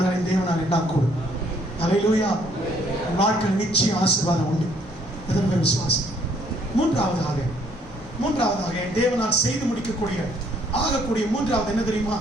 தேவனால் எல்லாம் கூடும். அல்லேலூயா. வாழ்க்கை நிச்சயம் ஆசீர்வாதம் உண்டு. எதற்கு விசுவாசம். மூன்றாவதாக தேவனால் செய்து முடிக்கக்கூடிய ஆகக்கூடிய மூன்றாவது என்ன தெரியுமா?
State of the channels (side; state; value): both; normal; correlation 0.65